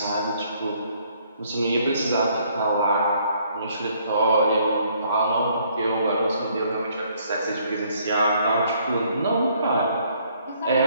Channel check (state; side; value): inverted; both; correlation -0.65